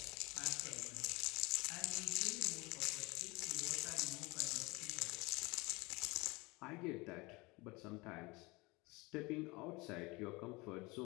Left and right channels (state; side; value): quieter; right; 24.8 dB